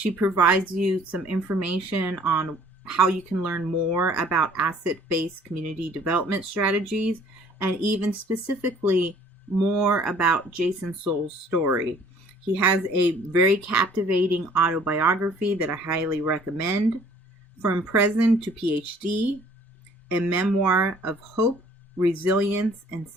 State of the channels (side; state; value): both; normal; correlation 0.55